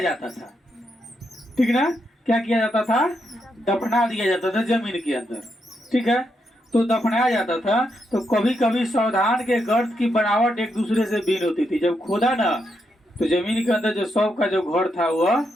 जाता था, ठीक ना। क्या किया जाता था? दफना दिया जाता था जमीन के अंदर, ठीक है। तो दफनाया जाता था। तो कभी कभी सावधान के गर्त की बनावट एक दूसरे से भिन्न होती थी। जब खोदा ना, तो जमीन के अंदर जो शव का जो घर था वह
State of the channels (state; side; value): normal; both; correlation 0.81